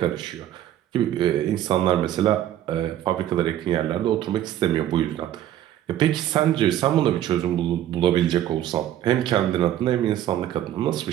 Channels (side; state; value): left; quieter; 12.0 dB